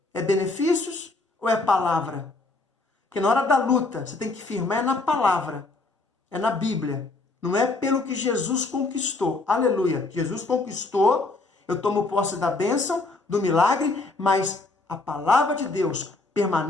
É benefícios ou é palavra? Porque na hora da luta, você tem que firmar é na palavra, é na Bíblia. Não é pelo que Jesus conquistou. Aleluia. Jesus conquistou, eu tomo posse da bênção, do milagre, mas a palavra de Deus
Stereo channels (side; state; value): right; quieter; 3.4 dB